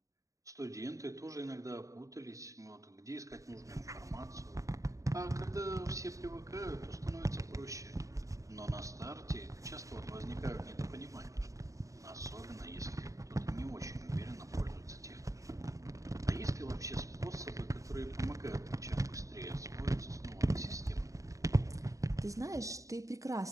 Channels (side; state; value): left; late; 0.16 ms